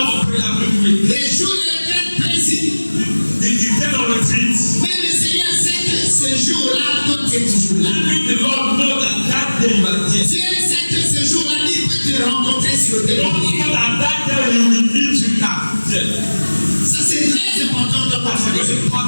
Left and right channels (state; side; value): inverted; both; correlation -1.00